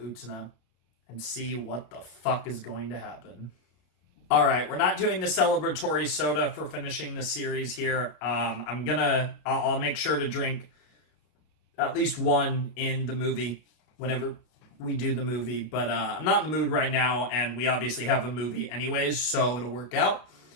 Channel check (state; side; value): late; right; 33 ms